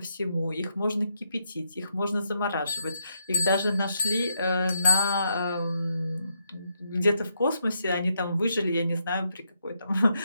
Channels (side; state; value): both; inverted; correlation -0.79